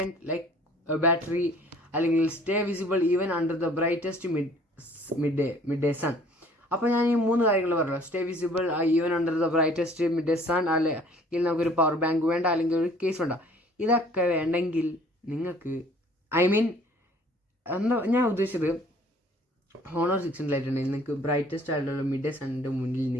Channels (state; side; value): normal; both; correlation 0.54